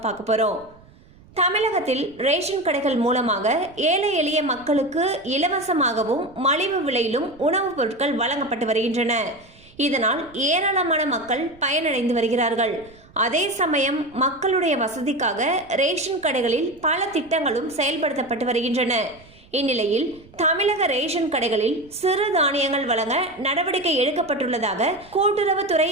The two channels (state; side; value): noise; right; rumble, 26 dB below the sound